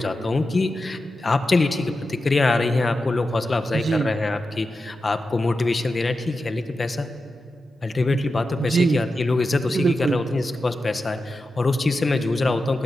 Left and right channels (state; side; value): normal; both; correlation 0.91